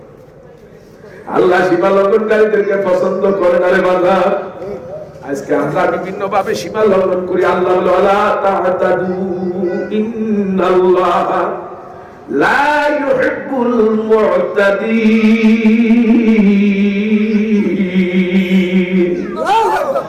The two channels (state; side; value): identical; both; correlation 1.00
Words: আল্লাহ সীমা লঙ্ঘনকারীদেরকে পছন্দ করে না রে বান্দা। আজকে আমরা বিভিন্ন ভাবে সীমা লঙ্ঘন করি। আল্লাহ বলে ওয়ালা তা'তাদু ইন্নাল্লাহা লা ইউহিব্বুল মু'তাদিন।